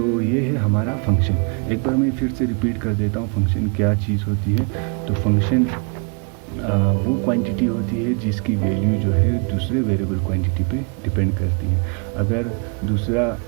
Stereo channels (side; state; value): left; quieter; 37.2 dB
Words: ये है हमारा फंक्शन। एक बार मैं फिर से रिपीट कर देता हूँ फंक्शन क्या चीज़ होती है। तो फंक्शन वो क्वांटिटी होती है जिसकी वैल्यू जो है दूसरे वेरिएबल क्वांटिटी पे डिपेंड करती है। अगर दूसरा